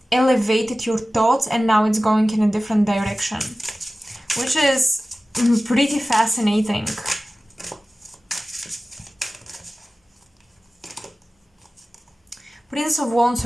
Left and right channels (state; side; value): normal; both; correlation 0.96